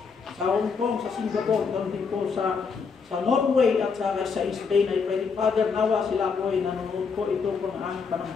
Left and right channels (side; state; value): right; quieter; 5.4 dB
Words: sa Hong Kong, sa Singapore, ganun din po sa Norway at sa Spain. I pray, Father, nawa sila po ay nanonood po ito po ng aming